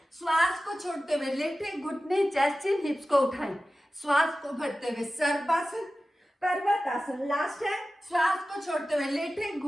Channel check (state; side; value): normal; both; correlation 0.95